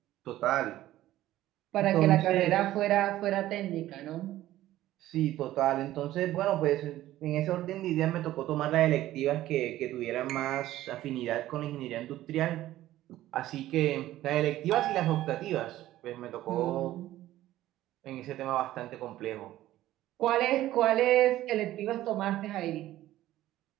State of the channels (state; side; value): quieter; left; 14.6 dB